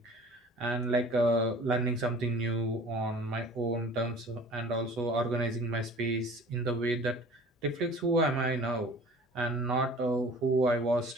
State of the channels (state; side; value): normal; both; correlation 0.46